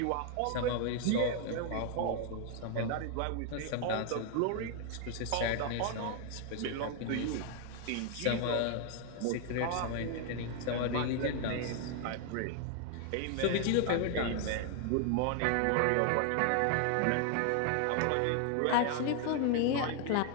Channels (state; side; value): different; both; correlation 0.00